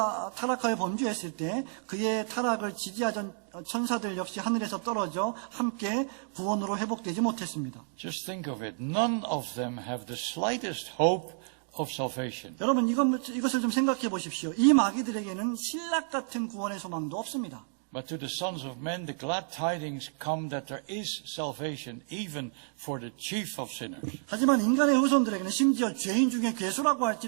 타락하여 범죄했을 때 그의 타락을 지지하던 천사들 역시 하늘에서 떨어져 함께 구원으로 회복되지 못했습니다. Just think of it. None of them have the slightest hope of salvation. 여러분, 이것을 좀 생각해 보십시오. 이 마귀들에게는 신락 같은 구원의 소망도 없습니다. But to the sons of men, the glad tidings come that there is salvation even for the chief of sinners. 하지만 인간의 후손들에게는 심지어 죄인 중에 괴수라고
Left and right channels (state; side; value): silent; left; 57 dB below the other